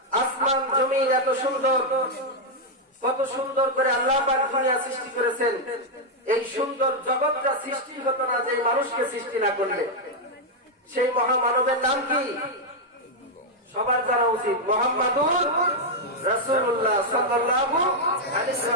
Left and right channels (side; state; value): both; normal; correlation -0.01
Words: আসমান জমিন এত সুন্দর, কত সুন্দর করে আল্লাহ পাক দুনিয়া সৃষ্টি করেছেন। এই সুন্দর জগৎটা সৃষ্টি হতো না যে মানুষকে সৃষ্টি না করলে। সেই মহামানবের নাম কি সবার জানা উচিত, মুহাম্মাদুর রাসূলুল্লাহ সাল্লাল্লাহু আলাইহি